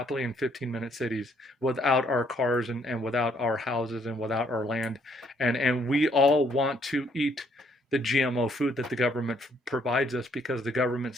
in 15-minute cities without our cars and without our houses and without our land. And we all want to eat the GMO food that the government provides us because the government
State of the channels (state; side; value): normal; both; correlation 0.67